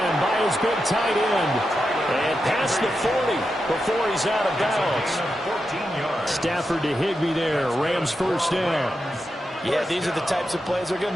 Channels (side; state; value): both; normal; correlation 0.88